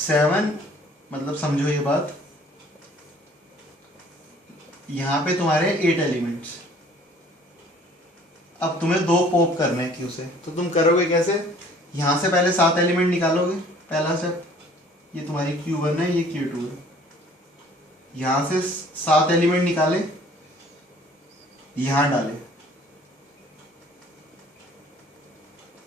7, मतलब समझो ये बात, यहां पे तुम्हारे 8 एलिमेंट्स। अब तुम्हें 2 पॉप करने हैं Q से, तो तुम करोगे कैसे, यहां से पहले 7 एलिमेंट निकालोगे, पहला स्टेप, ये तुम्हारी Q1 है, ये Q2 है, यहां से 7 एलिमेंट निकाले, यहां डाले,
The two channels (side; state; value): both; normal; correlation 0.54